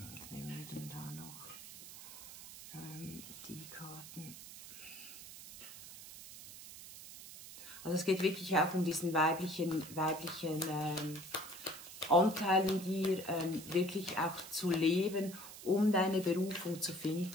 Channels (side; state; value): right; noise; hiss, 14 dB below the sound